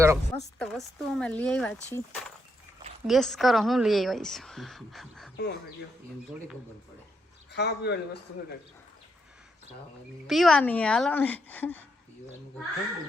મસ્ત વસ્તુ અમે લઈ આવ્યા છીએ ગેસ કરો હું લઈ આવ્યા છું ખાવા પીવાની વસ્તુ છે પીવાની હાલો ને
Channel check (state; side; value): normal; both; correlation 0.79